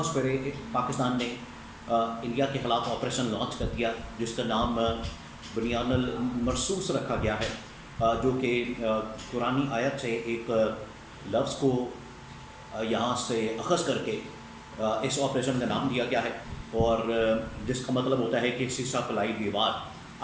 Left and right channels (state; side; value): identical; both; correlation 1.00